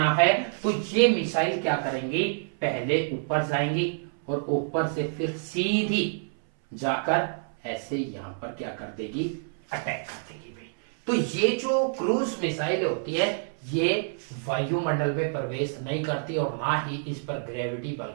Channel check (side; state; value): left; silent; 60 dB below the other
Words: है। तो ये मिसाइल क्या करेंगी? पहले ऊपर जाएंगी और ऊपर से फिर सीधी जाकर ऐसे यहां पर क्या कर देगी? अटैक कर देगी भाई। तो ये जो क्रूज मिसाइल होती है ये वायुमंडल में प्रवेश नहीं करती और ना ही इस पर ग्रेविटी